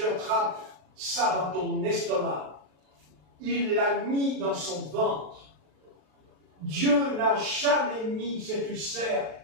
attrapes ça dans ton estomac. il l'a mis dans son ventre. Dieu n'a jamais mis cet ulcère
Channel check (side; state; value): left; late; 39 ms